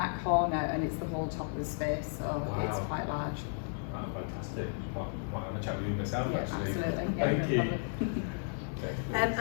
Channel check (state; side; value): silent; right; digital silence